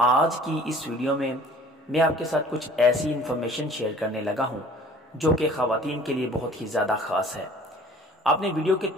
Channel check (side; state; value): both; normal; correlation 0.50